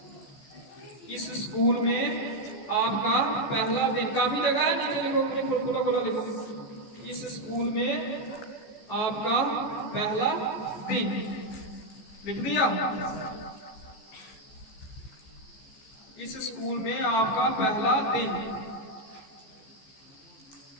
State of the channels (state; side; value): late; right; 15 ms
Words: इस स्कूल में आपका पहला दिन, काफी जगह है, नीचे लिखो, खुला खुला लिखो, इस स्कूल में आपका पहला दिन, लिख दिया। इस स्कूल में आपका पहला दिन।